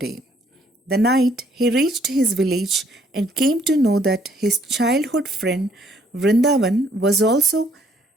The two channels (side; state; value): both; normal; correlation 0.65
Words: The night he reached his village and came to know that his childhood friend Vrindavan was also